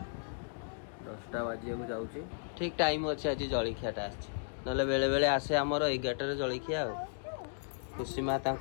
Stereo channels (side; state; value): right; silent; digital silence